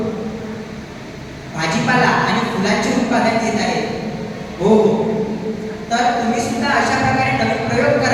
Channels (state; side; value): identical; both; correlation 1.00